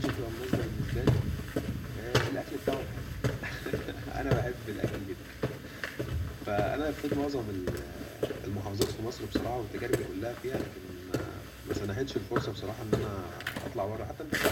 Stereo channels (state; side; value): identical; both; correlation 1.00